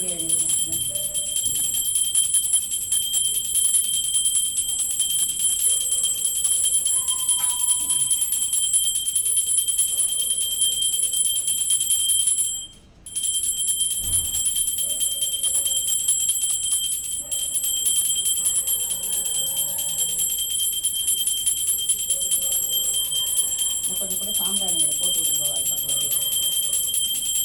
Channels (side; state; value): both; identical; correlation 1.00